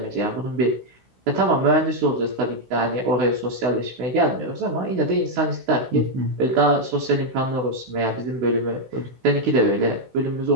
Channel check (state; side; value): late; left; 16 ms